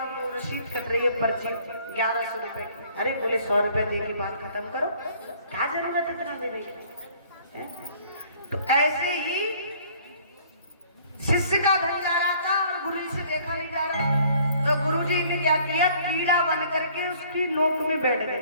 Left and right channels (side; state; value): both; inverted; correlation -0.56